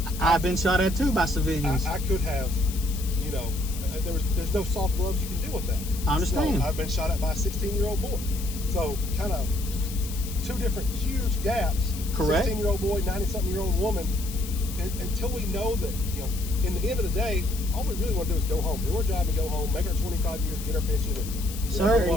I've been shot at too by civilians. I could have, there's no soft gloves you can do with that. I understand. So I've been shot at by a 16-year-old boy. So kind of 2 different huge gaps. Correct. 16-year-old boy, 90-something-year-old woman. And until we know that, in the end of the day, all we really want to do is go home, do our job and go home, make our 25 years, get our pension. And, Sir,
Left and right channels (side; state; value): left; noise; hiss, 12 dB below the sound